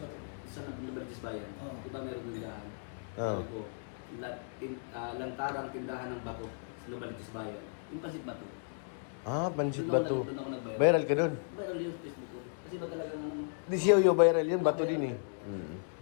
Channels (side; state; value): right; silent; digital silence